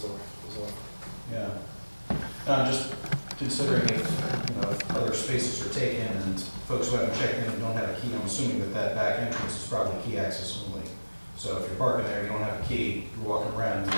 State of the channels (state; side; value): inverted; both; correlation -1.00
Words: as well. Yeah. No, I'm just considering if other spaces are taken and folks who haven't checked in and don't have a key, I'm assuming that back entrance is probably key access only. So if you're parking there, you don't have a key, you're walking around, you're